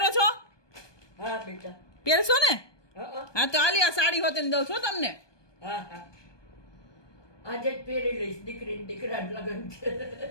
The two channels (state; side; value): late; right; 1.2 ms